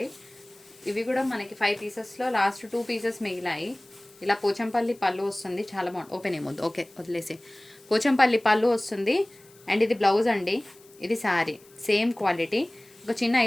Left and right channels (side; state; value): left; noise; hiss, 26 dB below the sound